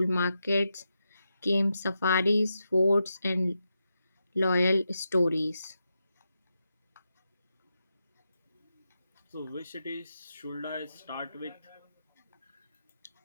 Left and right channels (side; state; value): both; inverted; correlation -0.87